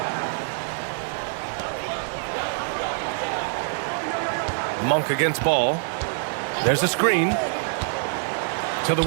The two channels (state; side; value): silent; left; digital silence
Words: Monk against Ball. There's a screen. To the